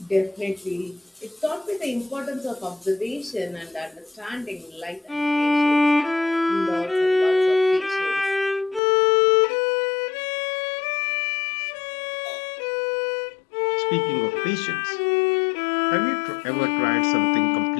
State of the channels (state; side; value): drops out; right; at 8.8 s